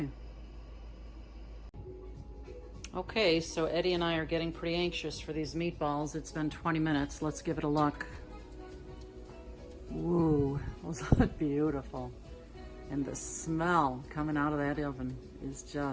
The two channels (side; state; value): both; identical; correlation 1.00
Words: Okay, so Eddie and I are getting pretty anxious for these meatballs. It's been 20 minutes. Let's give it a look. Ooh, those look beautiful. And the smell coming out of that oven is